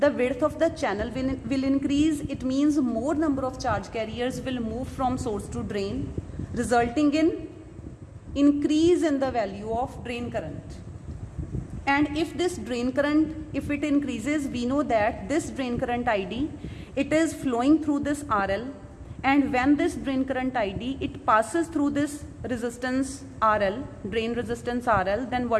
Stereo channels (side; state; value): both; identical; correlation 1.00